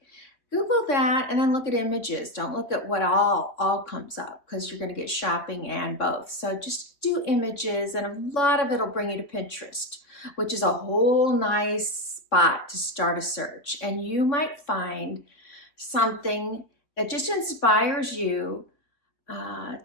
Google that and then look at images. Don't look at what all comes up, because you're going to get shopping and both. So just do images, and a lot of it will bring you to Pinterest, which is a whole nice spot to start a search. And you might find something that just inspires you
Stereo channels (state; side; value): late; right; 3.6 ms